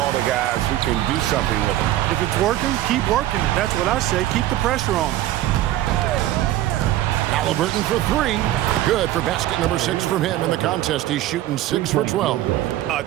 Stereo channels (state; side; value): quieter; left; 14.1 dB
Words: to guys who can do something with it. If it's working, keep working it. That's what I say. Keep the pressure on. Halliburton for 3. Good for basket number 6 from him in the contest. He's shooting 6 for 12. A